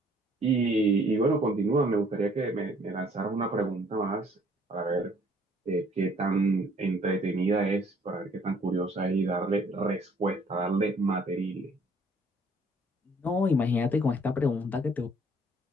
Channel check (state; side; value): normal; both; correlation 0.60